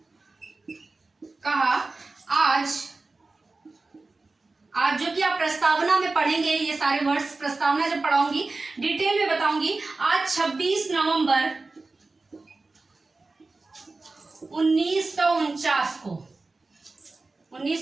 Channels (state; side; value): quieter; left; 3.5 dB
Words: आज जो कि आप प्रस्तावना में पढ़ेंगे, ये सारे वर्ड्स प्रस्तावना जब पढ़ाऊंगी डिटेल में बताऊंगी। आज 26 नवंबर